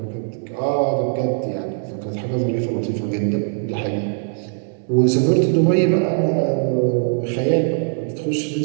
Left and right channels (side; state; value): left; silent; 63 dB below the other